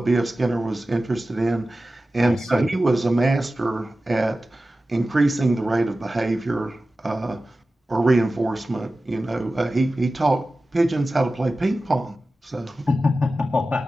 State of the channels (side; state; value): both; normal; correlation 0.95